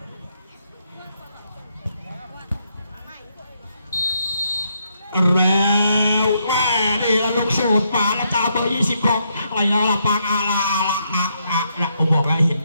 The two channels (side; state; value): both; inverted; correlation -0.77